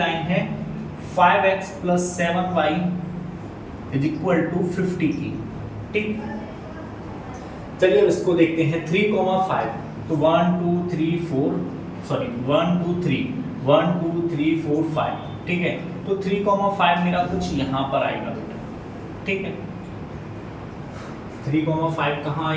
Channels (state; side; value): identical; both; correlation 1.00